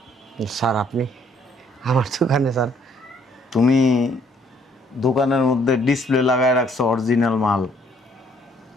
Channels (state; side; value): normal; both; correlation 0.64